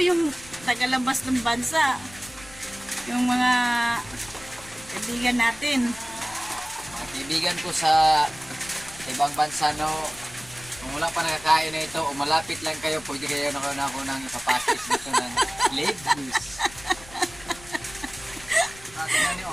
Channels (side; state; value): left; noise; rumble, 20 dB below the sound